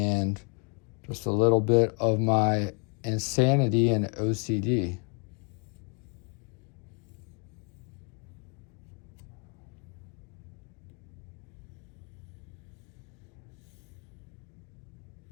just a little bit of my insanity and OCD.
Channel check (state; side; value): quieter; right; 37.1 dB